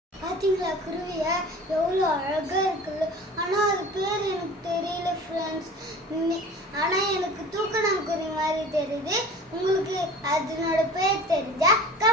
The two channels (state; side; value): normal; both; correlation 0.41